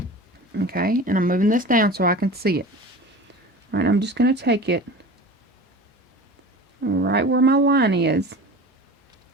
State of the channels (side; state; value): both; normal; correlation 0.36